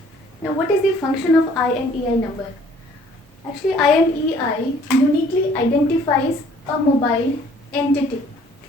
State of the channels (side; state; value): both; normal; correlation 0.58